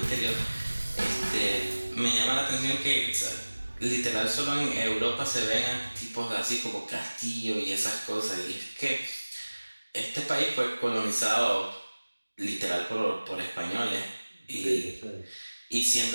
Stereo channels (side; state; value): both; inverted; correlation -1.00